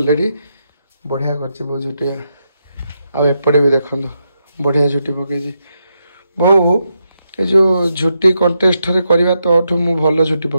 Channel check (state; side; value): inverted; both; correlation -0.83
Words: बढ़िया कर बहुत झुटिया आउपटे भी देखो बढ़िया झुटी पकई बो ये जो झुटी कंटेस्ट करवा तो मु भल झुटी